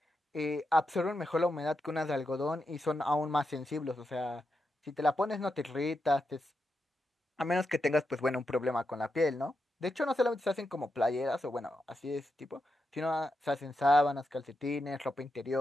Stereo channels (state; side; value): normal; both; correlation 0.86